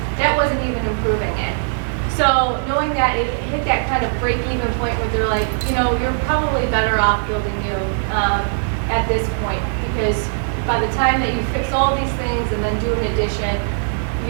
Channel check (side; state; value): left; silent; digital silence